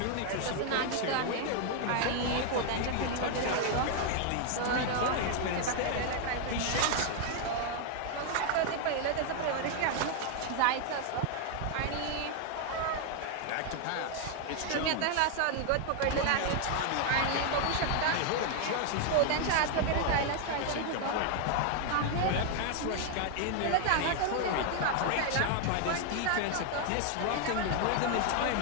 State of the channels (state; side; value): different; both; correlation 0.00